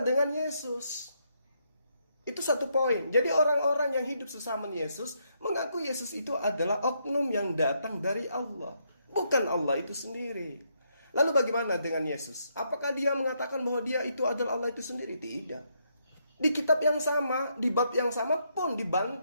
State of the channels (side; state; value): both; inverted; correlation -0.76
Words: dengan Yesus. Itu satu poin. Jadi orang-orang yang hidup sesama Yesus mengaku Yesus itu adalah oknum yang datang dari Allah, bukan Allah itu sendiri. Lalu bagaimana dengan Yesus? Apakah dia mengatakan bahwa dia itu adalah Allah itu sendiri? Tidak. Di kitab yang sama, di bab yang sama pun